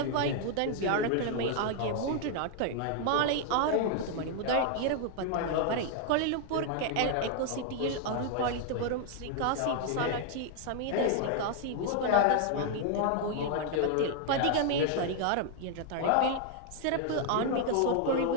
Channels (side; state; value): both; different; correlation 0.00